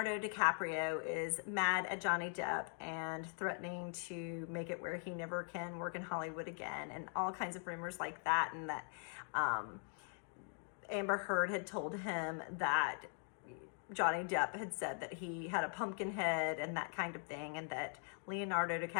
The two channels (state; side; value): silent; right; 50 dB below the other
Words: DiCaprio is mad at Johnny Depp and threatening to make it where he never can work in Hollywood again, and all kinds of rumors like that, and that Amber Heard had told him that Johnny Depp had said that he had a pumpkin head and that kind of thing, and that Leonardo